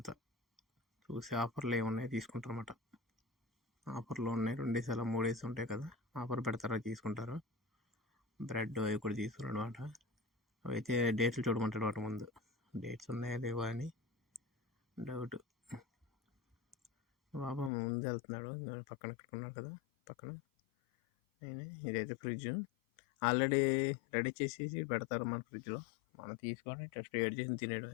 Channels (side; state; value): right; drops out; at 17.7 s